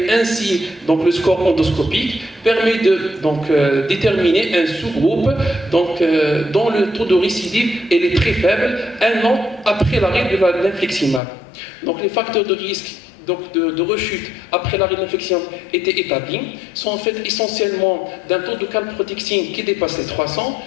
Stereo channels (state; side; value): drops out; right; at 11.2 s